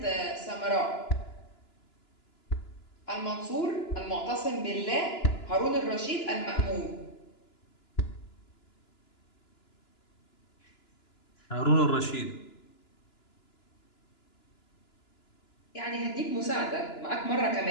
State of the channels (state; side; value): late; right; 2.9 ms